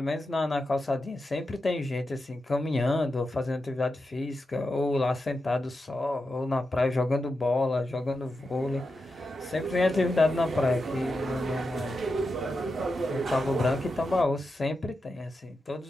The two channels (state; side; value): normal; both; correlation 0.89